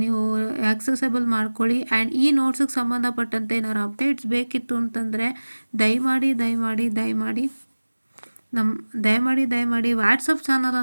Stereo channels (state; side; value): inverted; both; correlation -1.00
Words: ನೀವು ಆಕ್ಸೆಸಬಲ್ ಮಾಡ್ಕೊಳ್ಳಿ. ಆ್ಯಂಡ್ ಈ ನೋಟ್ಸಿಗೆ ಸಂಬಂಧಪಟ್ಟಂತೆ ಏನಾದ್ರು ಅಪ್ಡೇಟ್ಸ್ ಬೇಕಿತ್ತು ಅಂತಂದರೆ ದಯಮಾಡಿ ವಾಟ್ಸಪ್